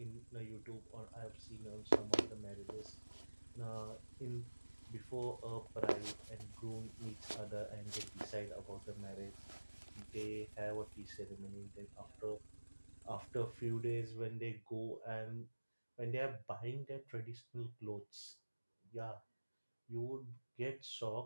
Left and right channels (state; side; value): inverted; both; correlation -1.00